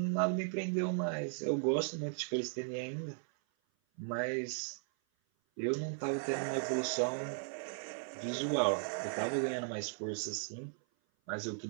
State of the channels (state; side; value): silent; left; 53 dB below the other